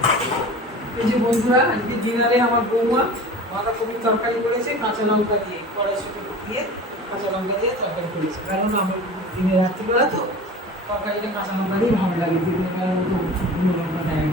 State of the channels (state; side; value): normal; both; correlation 0.38